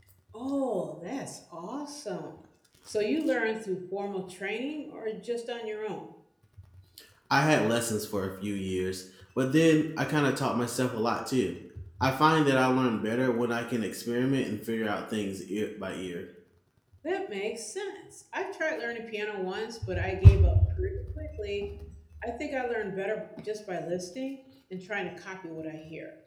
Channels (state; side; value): identical; both; correlation 1.00